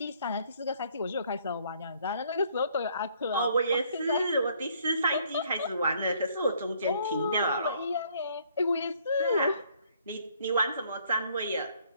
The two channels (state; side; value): inverted; both; correlation -0.64